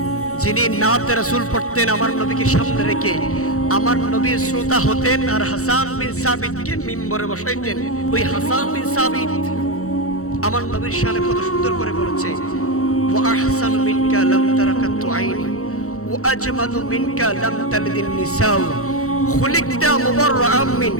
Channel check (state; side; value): late; right; 0.64 ms